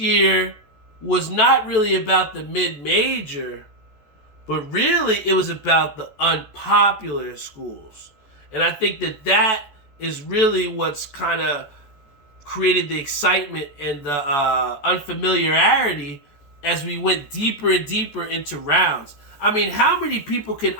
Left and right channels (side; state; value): right; late; 14 ms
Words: was not really about the mid-major, but really it was about the unpopular schools. And I think that is really what's kind of created the excitement and the unfamiliarity as we went deeper and deeper into rounds. I mean, how many people can